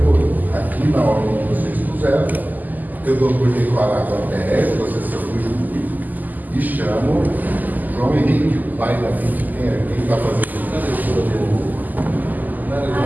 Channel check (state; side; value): late; left; 0.083 ms